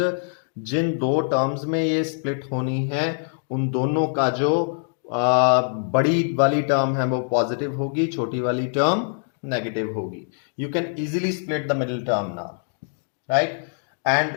जिन दो terms में ये split होनी है, उन दोनों का जो बड़ी वाली टर्म है वो पॉजिटिव होगी, छोटी वाली टर्म नेगेटिव होगी. You can easily split the middle term now, right?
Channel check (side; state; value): right; silent; digital silence